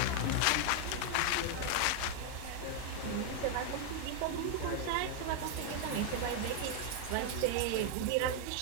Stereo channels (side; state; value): both; different; correlation 0.00